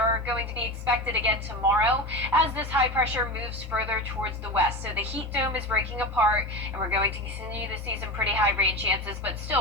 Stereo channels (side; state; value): both; normal; correlation 0.25